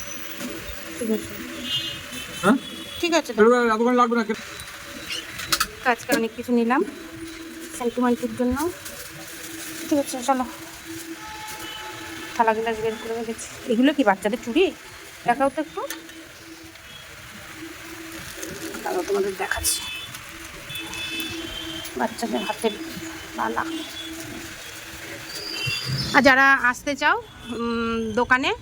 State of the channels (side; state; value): both; identical; correlation 1.00